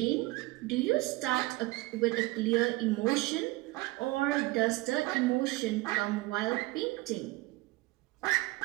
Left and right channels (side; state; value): left; quieter; 20.9 dB